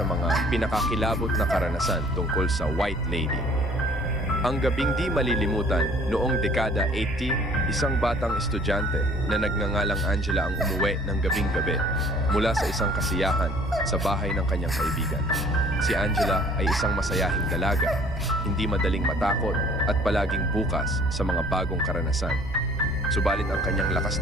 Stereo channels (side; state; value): both; normal; correlation 0.55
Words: mga pinakakilabot na karanasan tungkol sa White Lady. Ang gabing di malilimutan, noong dekada 80, isang batang estudyante na nagngangalang Angela ang umuwi ng gabing-gabi mula sa isang kasiyahan sa bahay ng kanyang kaibigan. Si Angela ay isang masayahing dalaga, hindi madaling matakot at palaging bukas sa mga bagong karanasan. Subalit ang kanyang lakas